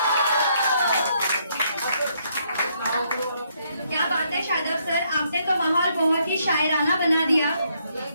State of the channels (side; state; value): both; inverted; correlation -0.73